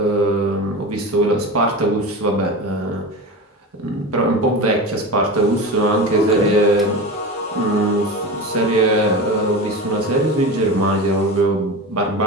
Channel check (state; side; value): normal; both; correlation 0.27